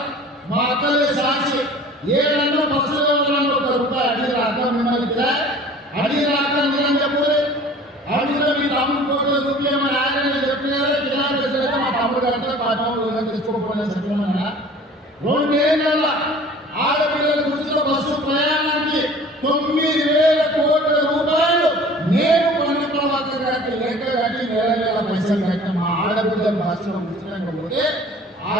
మా అక్కలే సాక్షి ఏడన్నా బస్సులో ₹1 అడిగి రాక మిమ్మల్ని అడిగి రాక నేను చెప్పలే అడిగిన మీ తమ్ముడు ఫోటో చూపించమని ఆయన చెప్పినారే కిరాయితే మా తమ్ముడు అంటే మా తమ్ముడు తెచ్చుకోకపోయినా చెప్పమన్నా 2 ఏళ్ళ ఆడపిల్లలకు ఉచిత బస్సు ప్రయాణానికి ₹9,000 కోట్ల నేను పొన్న ప్రభాకర్ గారికి లెక్క కట్టి నెల పైసలు కట్టిన మా ఆడబిడ్డలు బస్సులో ఉచితంగా పోతే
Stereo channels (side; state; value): both; normal; correlation 0.46